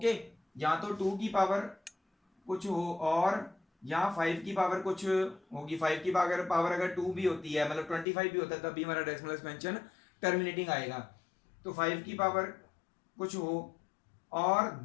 या तो 2 की पावर कुछ हो, और या 5 की पावर कुछ होगी। 5 की पावर अगर 2 भी होती है, मतलब 25 भी होता है, तब भी हमारा डेसिमल एक्सपेंशन टर्मिनेटिंग आएगा। तो 5 की पावर कुछ हो और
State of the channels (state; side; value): drops out; right; at 8.1 s